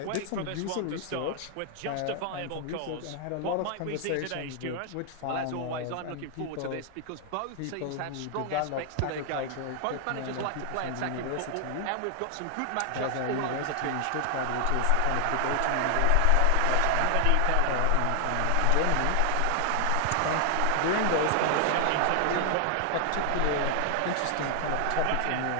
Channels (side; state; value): both; different; correlation 0.00